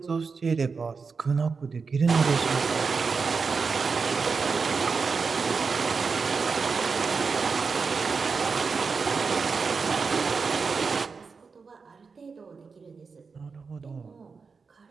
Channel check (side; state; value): left; quieter; 5.0 dB